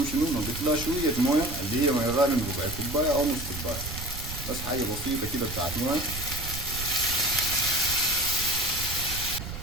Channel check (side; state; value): right; noise; rumble, 8 dB below the sound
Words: شنو نضيف لها شوية موية، اللي هي مية غالية من ربع كوباية أو نص كوباية، بس حاجة بسيطة كده بتاعت موية.